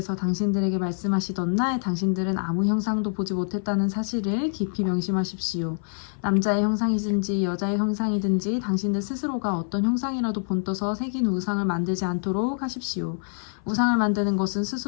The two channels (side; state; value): right; silent; 57 dB below the other